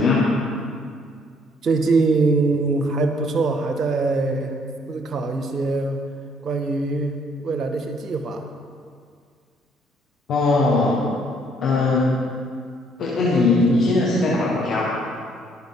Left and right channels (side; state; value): both; normal; correlation 0.65